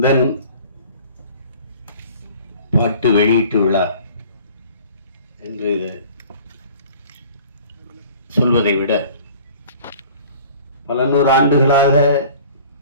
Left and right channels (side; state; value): both; inverted; correlation -0.47